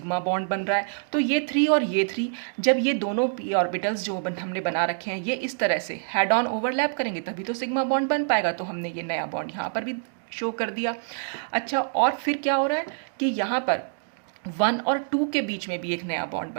बॉन्ड बन रहा है, तो ये 3 और ये 3 जब ये दोनों p ऑर्बिटल्स जो हमने बना रखे हैं ये इस तरह से हेड ऑन ओवरलैप करेंगे तभी तो सिग्मा बॉन्ड बन पाएगा, तो हमने ये नया बॉन्ड यहाँ पर भी शो कर दिया। अच्छा, और फिर क्या हो रहा है कि यहाँ पर 1 और 2 के बीच में भी एक नया बॉन्ड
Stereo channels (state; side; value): silent; left; digital silence